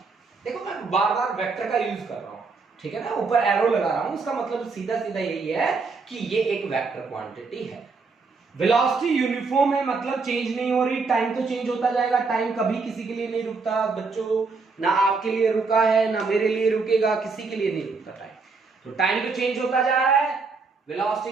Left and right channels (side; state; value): left; quieter; 4.4 dB